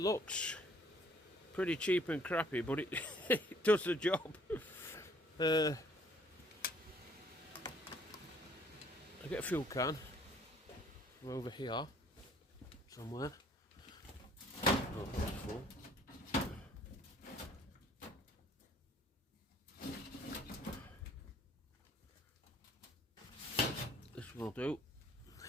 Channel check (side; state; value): both; normal; correlation 0.60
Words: looks pretty cheap and crappy, but it, it does the job. I get a fuel can from over here somewhere. Oh, that's full. This will do.